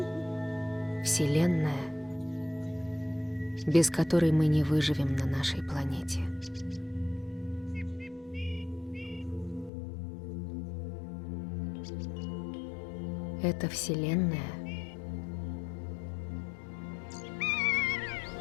Вселенная, без которой мы не выживем на нашей планете. Эта Вселенная —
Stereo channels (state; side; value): drops out; right; at 9.7 s